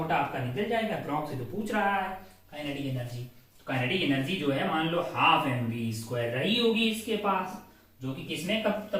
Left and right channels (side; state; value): both; identical; correlation 1.00